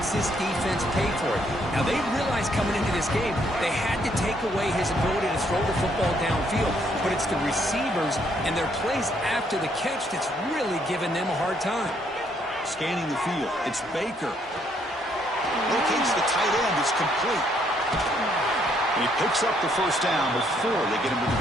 this defense pay for it. Now, they realized coming into this game they had to take away his ability to throw the football downfield, but it's the receivers and their plays after the catch that's really giving them a hard time. Scanning the field, it's Baker. Locates the tight end, it's complete. And he picks up the first down before they get him to the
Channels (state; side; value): normal; both; correlation 0.70